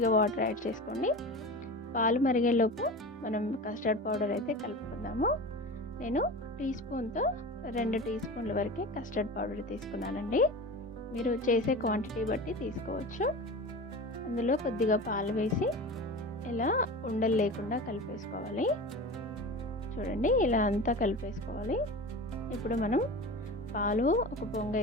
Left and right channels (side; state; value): both; normal; correlation 0.31